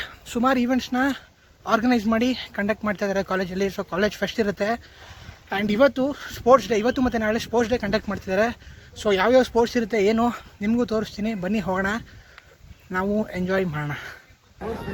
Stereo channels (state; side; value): identical; both; correlation 1.00